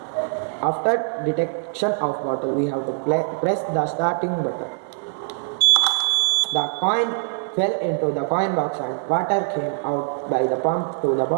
after detection of bottle, we have to press the starting button. The coin fell into the coin box and water came out by the pump to the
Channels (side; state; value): left; silent; 64 dB below the other